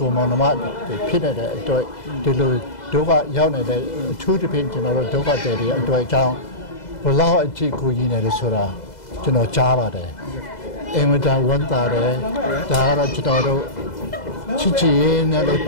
ိုမောင်နှမဖြစ်နေတဲ့အတွက်ဒီလိုဒုက္ခရောက်နေတဲ့အထူးသဖြင့်ကျွန်တော်တို့ဒုက္ခတွေအတွက်အကြောင်းဘလောက်အထိကူညီနေတယ်ဆိုတာကျွန်တော်ကြားပါတယ်အင်မတန်ဝမ်းသာတယ်ဒါကတော့ကျွန်တော်တို့ချစ်ချစ်ရေးနဲ့လည်းပ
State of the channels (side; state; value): right; late; 2.0 ms